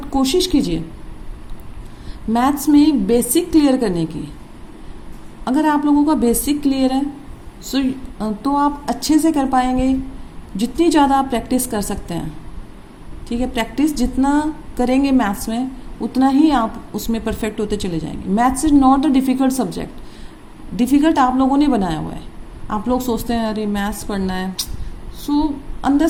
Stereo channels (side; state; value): both; identical; correlation 1.00